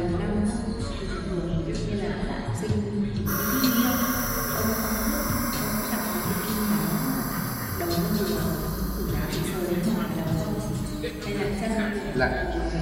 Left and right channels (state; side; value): identical; both; correlation 1.00